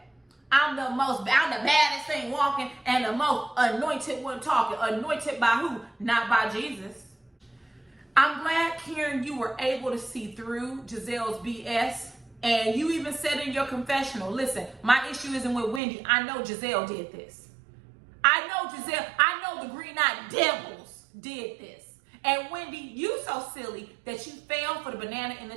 I'm the baddest thing walking and the most anointed one talking. Anointed by who? Not by Jesus. I'm glad, Karen, you were able to see through Giselle's BS. And you even said in your confessional, listen, my issue isn't with Wendy. I know Giselle did this. I know the Green-Eyed Devils did this. And Wendy, you so silly that you fell for the banana in the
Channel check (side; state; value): left; drops out; at 15.8 s